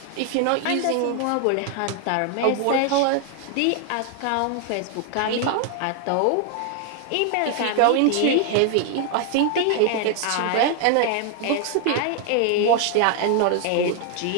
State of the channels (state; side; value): different; both; correlation 0.00